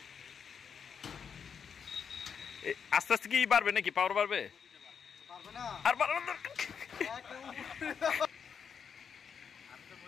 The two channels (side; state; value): right; quieter; 6.9 dB